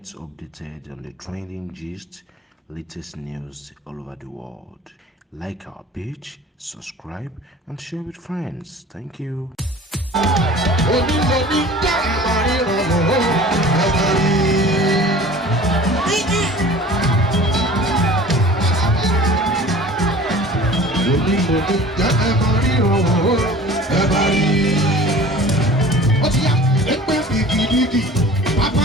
updated on the trending gist, latest news all over the world. Like our page, subscribe, and share with friends. Thank you.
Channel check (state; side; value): normal; both; correlation 0.43